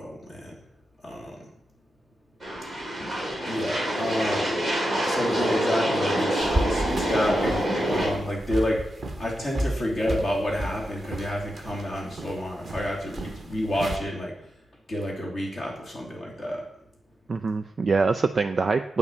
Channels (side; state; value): both; normal; correlation 0.88